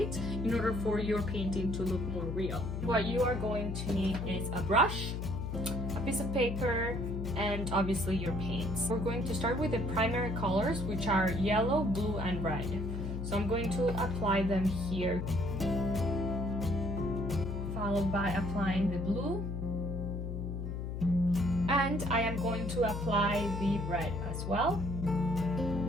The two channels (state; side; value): noise; left; hum, 4 dB below the sound